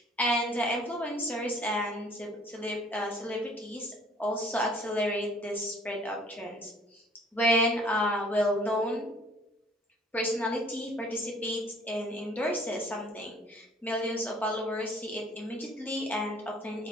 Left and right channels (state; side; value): normal; both; correlation 0.56